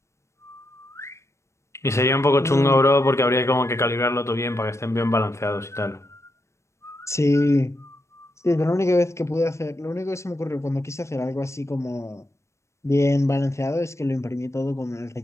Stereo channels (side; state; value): right; late; 0.14 ms